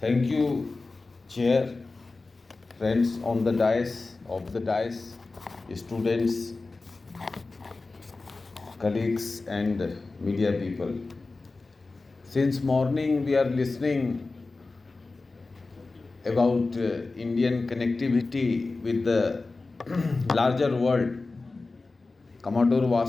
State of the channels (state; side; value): quieter; right; 3.6 dB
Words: you, Chair, friends on the dais, students, colleagues and media people. Since morning we are listening about Indian connectivity with the larger world. Commodore